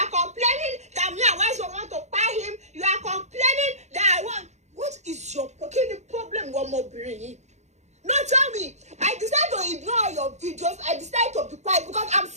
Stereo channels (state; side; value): late; left; 0.33 ms